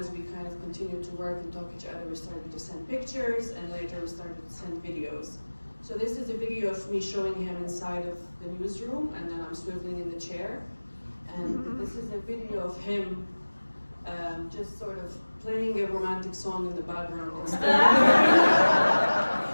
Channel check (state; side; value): inverted; both; correlation -1.00